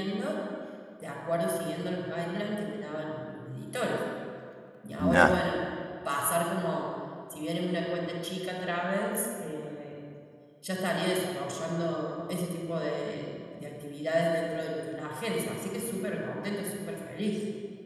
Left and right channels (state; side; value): identical; both; correlation 1.00